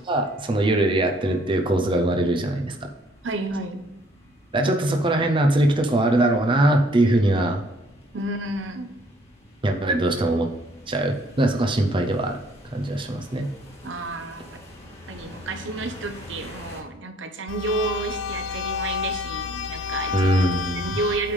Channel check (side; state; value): both; normal; correlation 0.60